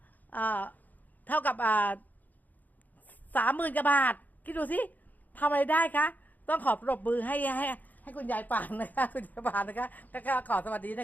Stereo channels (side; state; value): right; late; 0.082 ms